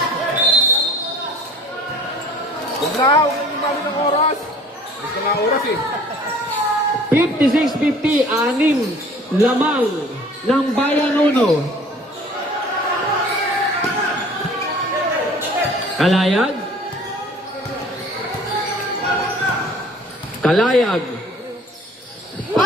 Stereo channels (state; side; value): normal; both; correlation 0.50